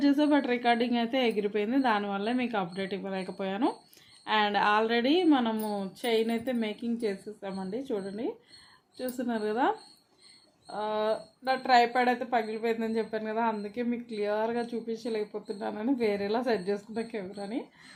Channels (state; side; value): identical; both; correlation 1.00